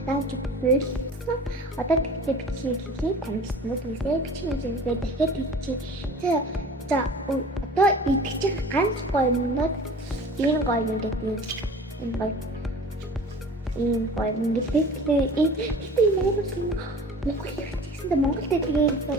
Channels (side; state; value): both; normal; correlation 0.42